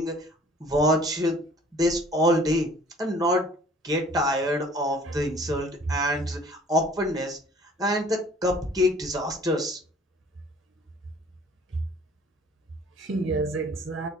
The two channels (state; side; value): normal; both; correlation 0.53